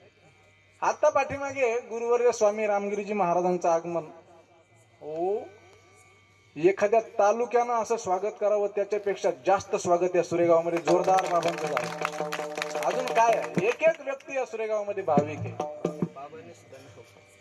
आता पाठीमागे गुरुवर्य स्वामी रामगिरीजी महाराजांचं आगमन. हो एखाद्या तालुक्यानं असं स्वागत करावं त्याच्यापेक्षा जास्त स्वागत या सुरेगावमध्ये जोरदार बाबांचं झालं. अजून काय आहे, एक व्यक्ती या सुरेगावमध्ये भाविक आहे.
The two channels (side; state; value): both; identical; correlation 1.00